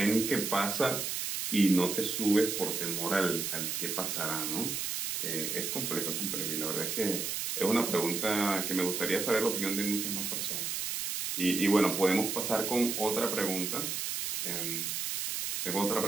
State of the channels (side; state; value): right; noise; hiss, 2 dB below the sound